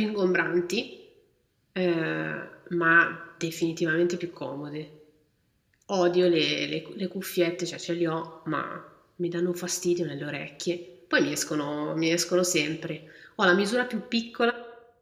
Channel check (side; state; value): both; identical; correlation 1.00